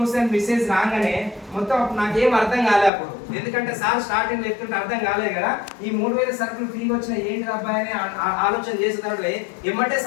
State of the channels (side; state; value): right; drops out; at 2.9 s